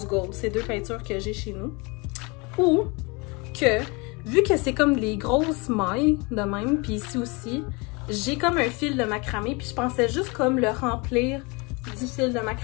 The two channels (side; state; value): right; quieter; 28.3 dB